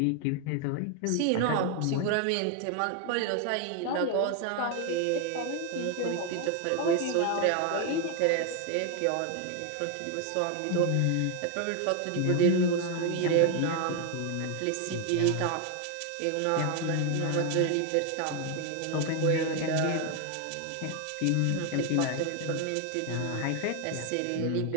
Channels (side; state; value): both; different; correlation 0.01